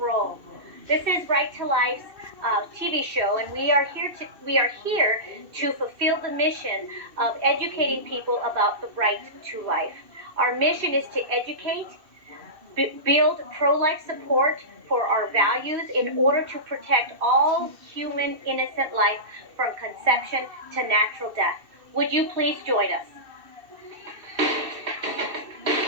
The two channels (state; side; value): late; left; 2.6 ms